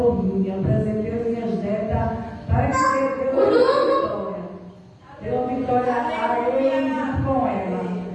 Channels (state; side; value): identical; both; correlation 1.00